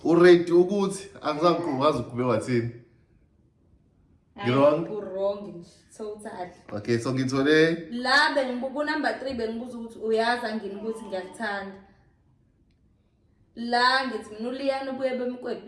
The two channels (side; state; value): both; identical; correlation 1.00